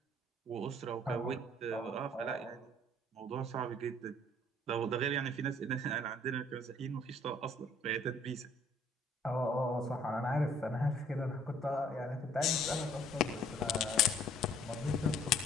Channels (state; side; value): normal; both; correlation 0.58